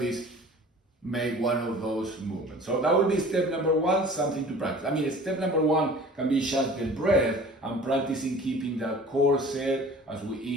make one of those movements. So that would be step number one, something to practice. I mean, step number one can be just the breath and practicing keeping that corset as we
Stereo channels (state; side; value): normal; both; correlation 0.44